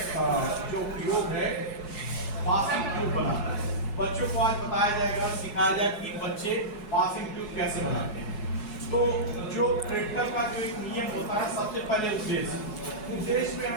जो प्रयोग है पासिंग ट्यूब बनाना है। बच्चों को आज बताया जाएगा, सिखाया जाएगा कि बच्चे पासिंग ट्यूब कैसे बनाते हैं। तो जो प्रैक्टिकल का जो एक नियम होता है, सबसे पहले उद्देश्य में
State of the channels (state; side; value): late; right; 4.7 ms